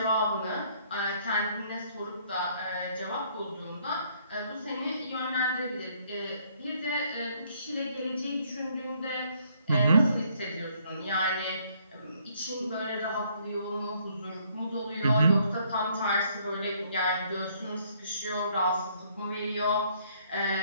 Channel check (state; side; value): inverted; both; correlation -0.66